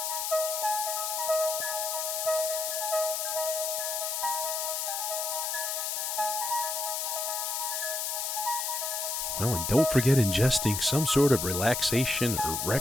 Well, and don't forget ingesting some sort of relaxation or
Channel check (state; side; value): noise; left; hiss, 1 dB below the sound